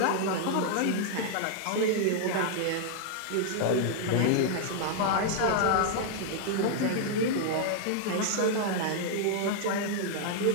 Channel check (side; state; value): both; different; correlation -0.01